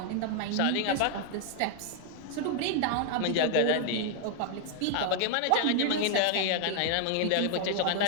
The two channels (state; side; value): different; both; correlation 0.00